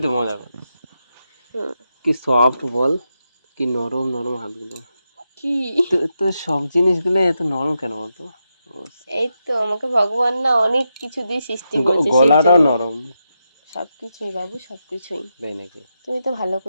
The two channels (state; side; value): inverted; both; correlation -0.86